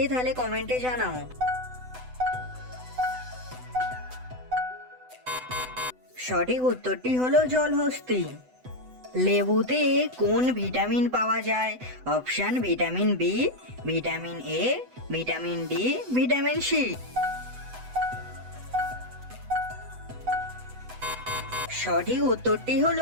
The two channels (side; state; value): left; late; 8.0 ms